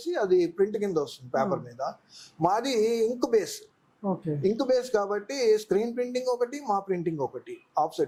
అది ప్రింట్ కింద వస్తుంది పేపర్ మీద. మాది ఇంక్ బేస్ కాబట్టి స్క్రీన్ ప్రింటింగ్ ఒకటి, మా ప్రింటింగ్ ఒకటి,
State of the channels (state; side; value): identical; both; correlation 1.00